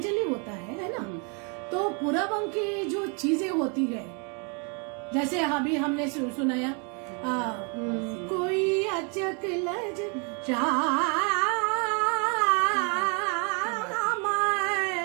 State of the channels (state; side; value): quieter; left; 35.8 dB